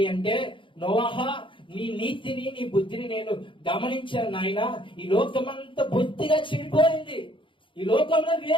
అంటే, నోవాహా, నీ నీతిని నీ బుద్ధిని నేను గమనించాను నాయన. ఈ లోకమంతా బుద్ధిగా చెడిపోయింది. ఈ లోకంలో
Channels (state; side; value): late; right; 0.25 ms